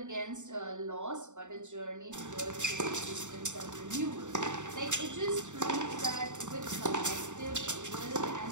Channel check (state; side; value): late; left; 0.85 ms